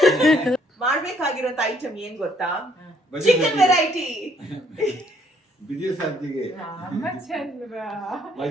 ಮಾಡ್ಬೇಕಾಗಿರೋಂತ ಐಟಮ್ ಏನ್ ಗೊತ್ತಾ? Chicken variety. ಬಿಜಿ ಸಂತಿಗೆ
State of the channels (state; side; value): normal; both; correlation 0.66